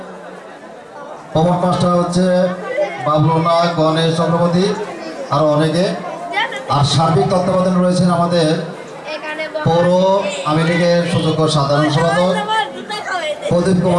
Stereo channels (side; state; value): both; identical; correlation 1.00